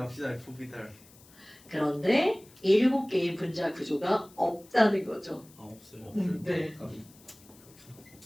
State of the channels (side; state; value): left; noise; hiss, 25 dB below the sound